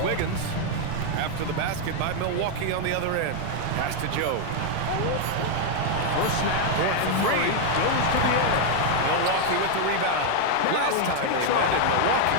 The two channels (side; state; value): both; different; correlation 0.00